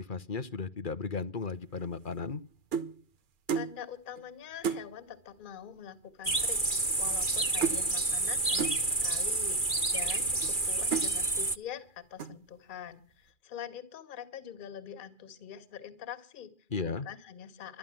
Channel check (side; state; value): right; late; 2.4 ms